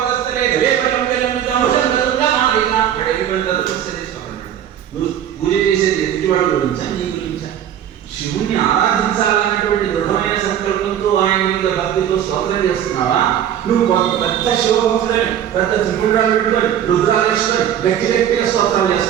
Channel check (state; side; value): quieter; left; 10.1 dB